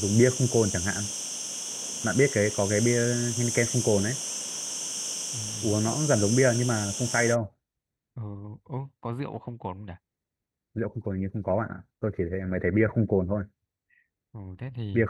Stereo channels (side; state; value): both; identical; correlation 1.00